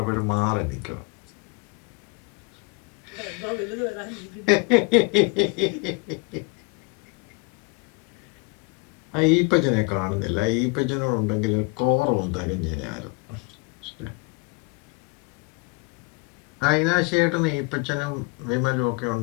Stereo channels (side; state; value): right; quieter; 30.4 dB